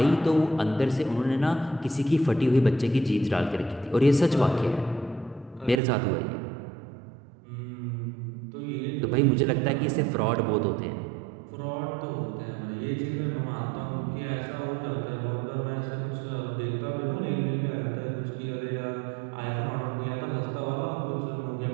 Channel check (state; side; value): drops out; left; at 5.8 s